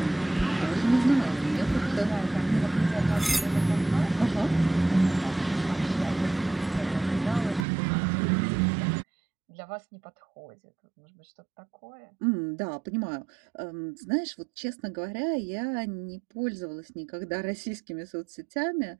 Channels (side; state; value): left; drops out; at 7.7 s